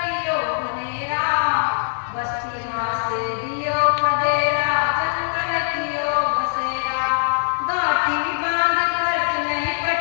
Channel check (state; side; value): silent; right; 55 dB below the other